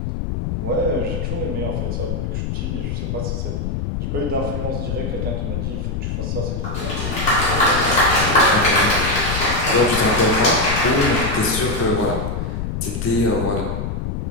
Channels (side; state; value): left; noise; rumble, 3 dB below the sound